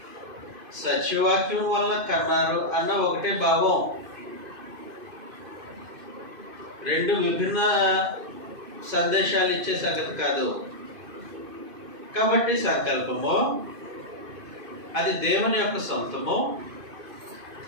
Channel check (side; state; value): left; late; 2.5 ms